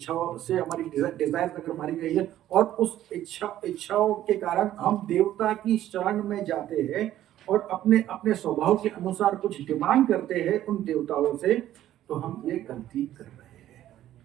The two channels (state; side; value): quieter; left; 12.8 dB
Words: से हमारी डिजायर अगर मारी गई है और उस इच्छाओं के कारण हम देवता की शरण में जाते हैं और अपने अपने स्वभाव के अनुसार कुछ डिमांड करते हैं उन देवताओं से, तो हम ये गलती कर रहे हैं।